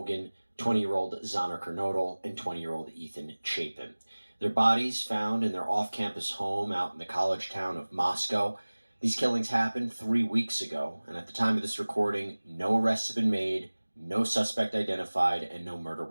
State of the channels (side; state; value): both; inverted; correlation -1.00